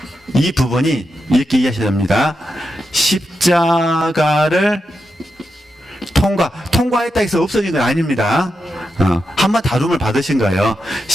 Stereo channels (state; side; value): normal; both; correlation 0.87